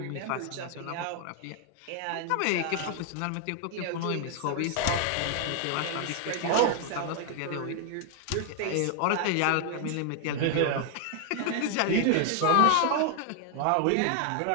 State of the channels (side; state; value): both; different; correlation 0.00